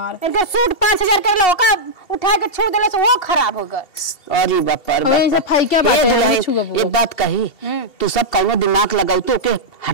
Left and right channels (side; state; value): right; late; 2.7 ms